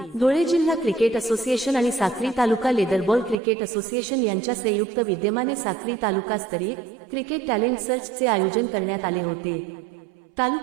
धुळे जिल्हा क्रिकेट असोसिएशन आणि साक्री तालुका लेदरबॉल क्रिकेट असोसिएशन यांच्या संयुक्त विद्यमाने साक्री तालुकास्तरीय क्रिकेट टॅलेंट सर्चचे आयोजन करण्यात आले होते।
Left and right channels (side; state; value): left; drops out; at 3.4 s